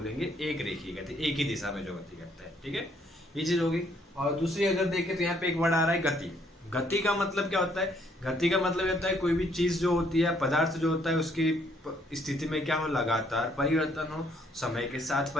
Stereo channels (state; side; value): normal; both; correlation 0.67